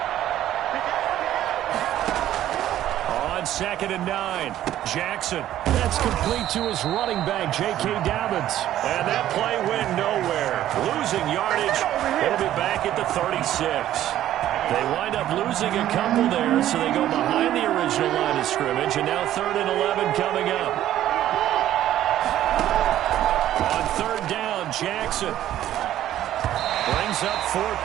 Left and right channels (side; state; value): left; quieter; 12.6 dB